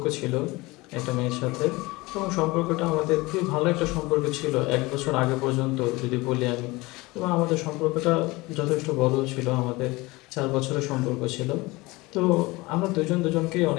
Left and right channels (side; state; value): right; quieter; 22.2 dB